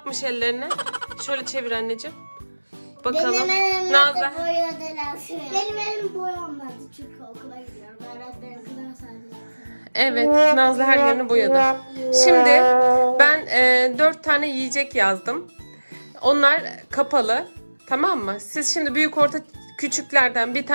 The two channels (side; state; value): both; inverted; correlation -1.00